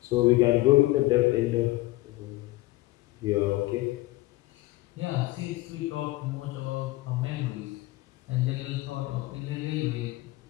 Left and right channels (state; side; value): quieter; right; 19.0 dB